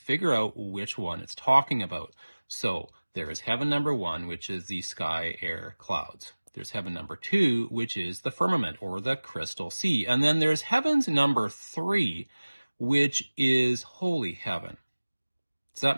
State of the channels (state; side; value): inverted; both; correlation -1.00